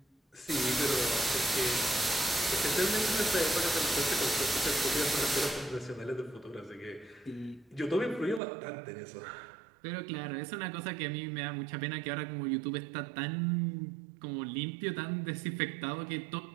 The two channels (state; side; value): drops out; left; at 8.4 s